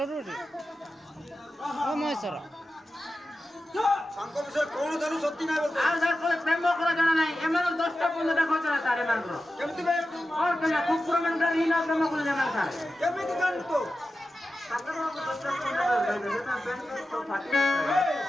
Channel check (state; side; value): normal; both; correlation 0.93